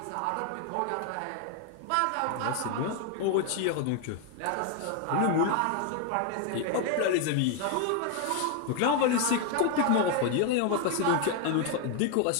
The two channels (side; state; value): both; different; correlation 0.01